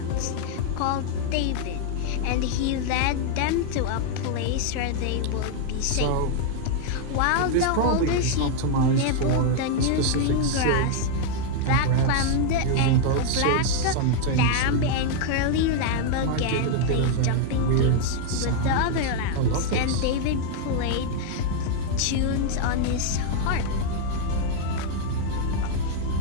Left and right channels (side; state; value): both; different; correlation 0.00